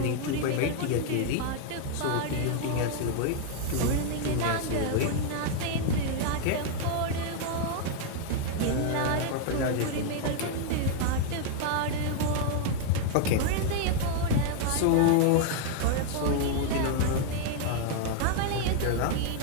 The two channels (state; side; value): different; both; correlation 0.00